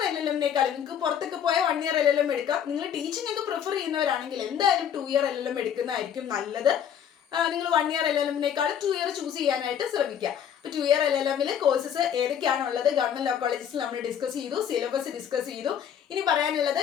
LLM-നേക്കാളും നിങ്ങൾക്ക് പുറത്തൊക്കെ പോയ 1 ഇയർ LLM എടുക്കാം. നിങ്ങൾ ടീച്ചിങ് ഒക്കെ പ്രിഫർ ചെയ്യുന്നവരാണെങ്കിൽ എന്തായാലും 2 ഇയർ LLM എടുക്കുന്നതായിരിക്കും നല്ലത്. നിങ്ങൾ 1 ഇയർ LLM-നേക്കാളും 2 ഇയർ ചൂസ് ചെയ്യാനായിട്ട് ശ്രമിക്കുക. അപ്പോൾ 2 ഇയർ LLM-ൽ കോഴ്സസ് ഏതൊക്കെയാണുള്ളത് ഗവൺമെന്റ് ലോ കോളേജസിൽ നമ്മൾ ഡിസ്കസ് ചെയ്തു, സിലബസ് ഡിസ്കസ് ചെയ്തു. ഇനി പറയാനുള്ളത്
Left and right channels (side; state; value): right; quieter; 8.8 dB